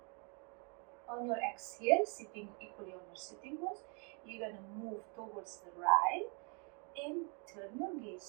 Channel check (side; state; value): left; quieter; 35.8 dB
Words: On your exhale, sitting equally on your sitting bones, you're going to move towards the right and turn your